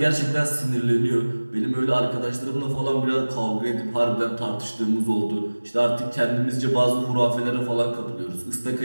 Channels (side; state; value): both; inverted; correlation -1.00